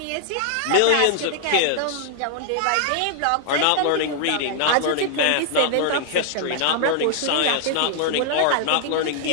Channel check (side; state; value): both; different; correlation -0.01